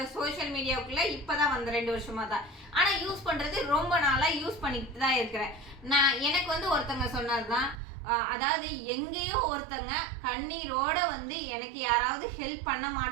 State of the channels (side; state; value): left; drops out; at 7.8 s